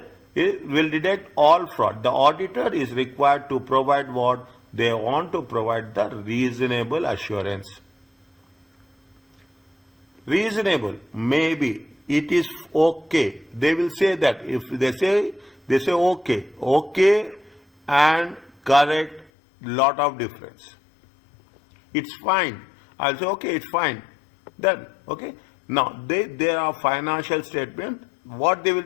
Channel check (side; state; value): right; drops out; at 19.3 s